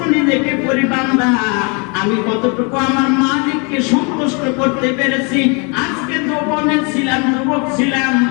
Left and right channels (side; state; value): right; quieter; 33.2 dB